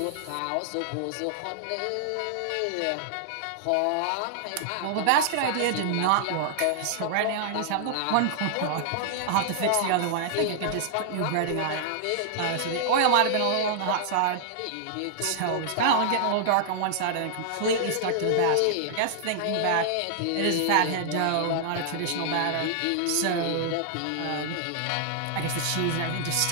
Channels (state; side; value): different; both; correlation -0.01